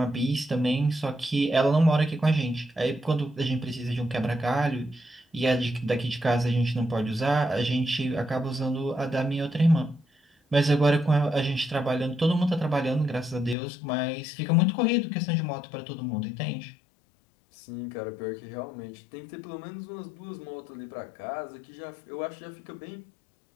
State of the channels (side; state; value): right; drops out; at 13.6 s